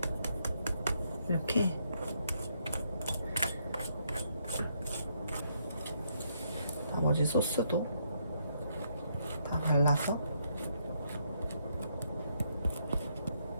이렇게 나머지 소스도 다 발라서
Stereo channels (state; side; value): inverted; both; correlation -0.75